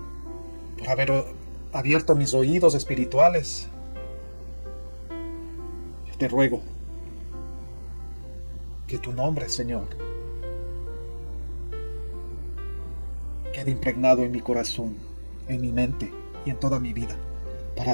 por haber abierto mis oídos espirituales. Yo te ruego que tu nombre, Señor, quede impregnado en mi corazón, en mi mente y en toda mi vida, para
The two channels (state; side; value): inverted; both; correlation -1.00